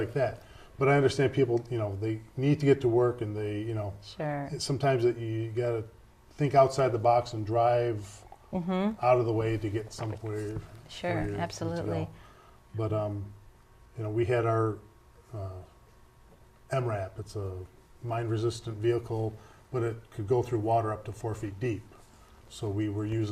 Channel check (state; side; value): identical; both; correlation 1.00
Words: that. But I understand people, they need to get to work, and they, Sure. sometimes you got to think outside the box and drive out of the way to get somewhere. Sure, absolutely. But we had our MRAP. It's a mine-resistant vehicle, but it could go through water up to 4 feet deep. So we were